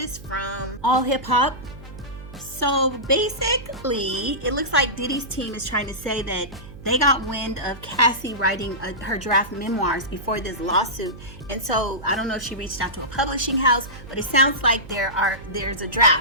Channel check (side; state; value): right; noise; hum, 16 dB below the sound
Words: from All Hip Hop. So basically, it looks like Diddy's team is trying to say that they got wind of Cassie writing her draft memoirs before this lawsuit. And so I don't know if she reached out to a publishing house, but it sounds like there's a